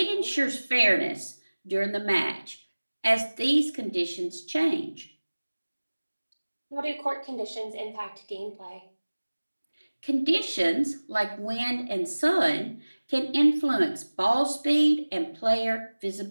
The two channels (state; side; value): inverted; both; correlation -1.00